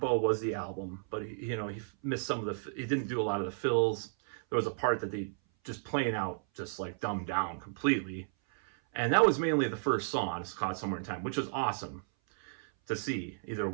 was the album, but he missed some of he didn't do a lot of the fills. There was a part that they just plain out, just like dumbed down completely. And that was mainly the first song, It's Caught Somewhere in Time, which was awesome to see either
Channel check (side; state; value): left; silent; 56 dB below the other